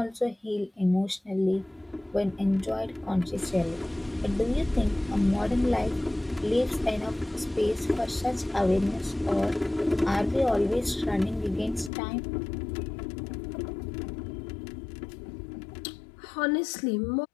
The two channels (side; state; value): right; drops out; at 11.9 s